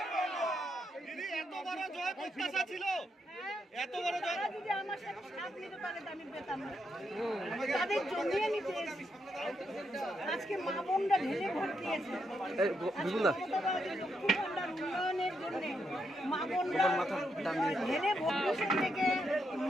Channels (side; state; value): both; normal; correlation 0.80